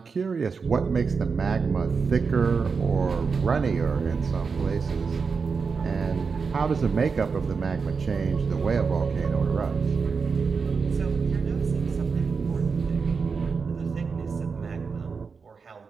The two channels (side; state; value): left; quieter; 5.2 dB